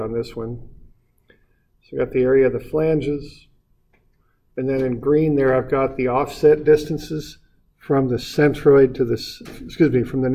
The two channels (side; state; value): both; identical; correlation 1.00